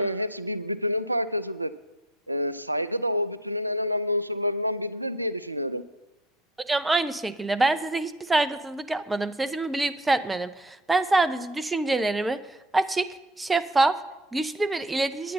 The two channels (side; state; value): both; normal; correlation 0.40